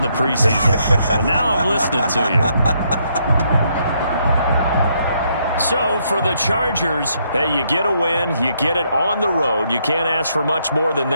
the preseason. But now I'm listening to you. So for the Chargers, hey, you get a win, you get it on the road. You can't ask for much more than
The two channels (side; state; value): both; inverted; correlation -0.74